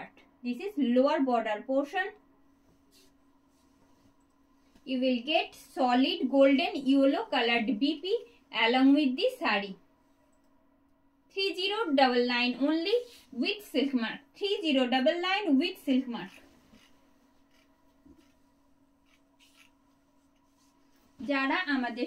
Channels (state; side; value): identical; both; correlation 1.00